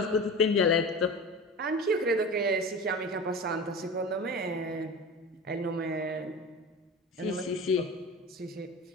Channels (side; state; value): both; normal; correlation 0.32